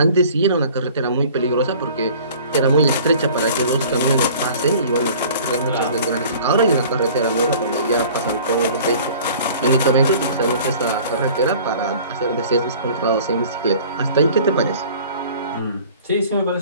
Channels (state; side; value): inverted; both; correlation -0.47